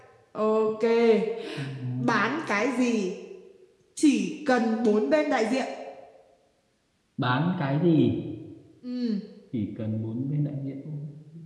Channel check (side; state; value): both; identical; correlation 1.00